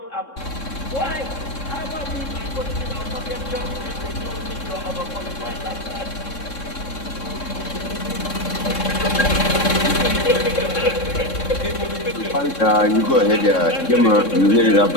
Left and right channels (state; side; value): late; right; 3.7 ms